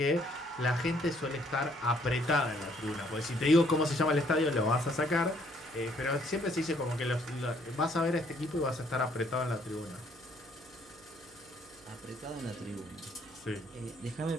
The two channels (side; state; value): right; noise; hum, 26 dB below the sound